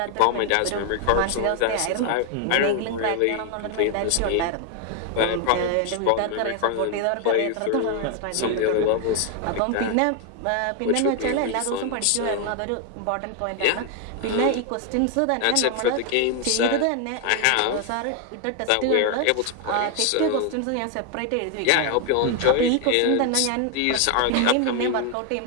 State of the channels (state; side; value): different; both; correlation 0.01